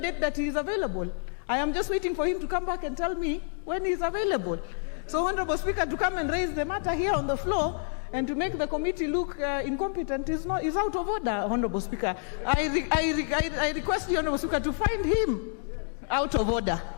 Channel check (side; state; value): right; silent; digital silence